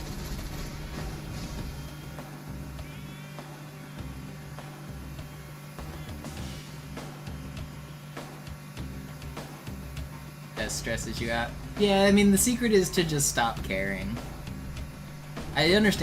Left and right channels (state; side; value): identical; both; correlation 1.00